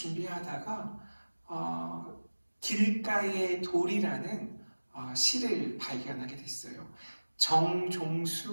길가의 돌이라는 시를 발견하게 됐어요.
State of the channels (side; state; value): both; inverted; correlation -1.00